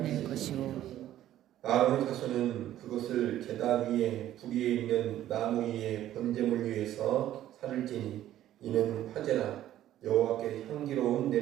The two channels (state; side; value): quieter; left; 12.7 dB